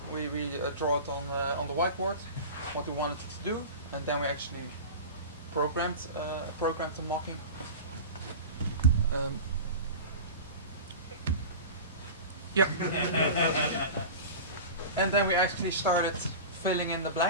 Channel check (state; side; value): inverted; both; correlation -0.31